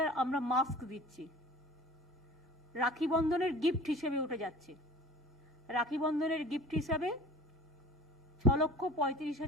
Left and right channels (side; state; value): both; normal; correlation 0.42